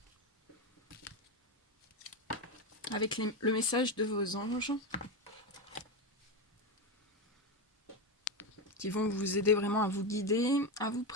avec le message de vos anges qui vont vous aider vraiment à vous guider, à vous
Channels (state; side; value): normal; both; correlation 0.13